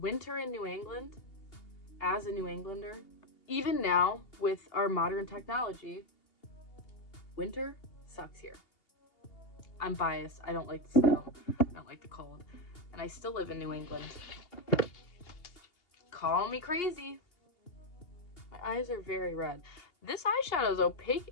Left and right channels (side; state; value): right; late; 2.8 ms